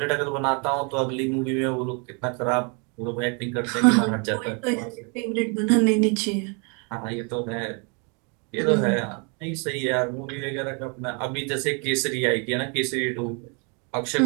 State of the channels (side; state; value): left; quieter; 35.1 dB